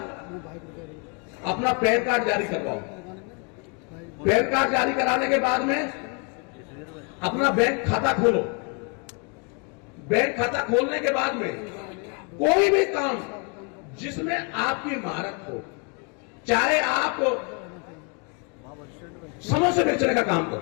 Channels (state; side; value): quieter; right; 34.1 dB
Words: अपना पैन कार्ड जारी करवाओ। पैन कार्ड जारी कराने के बाद में अपना बैंक खाता खोलो। बैंक खाता खोलने के बाद में कोई भी काम जिसमें आपकी महारत हो, चाहे आप समोसे बेचने का काम